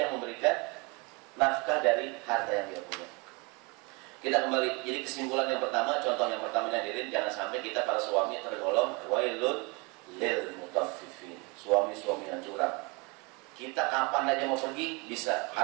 memberikan nafkah dari harta yang dia punya. Kita kembali, jadi kesimpulan yang pertama, contoh yang pertama hadirin, jangan sampai kita para suami tergolong wailun lil mutaffifin, suami-suami yang curang. Kita kapan aja mau pergi bisa,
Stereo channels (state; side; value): quieter; left; 29.1 dB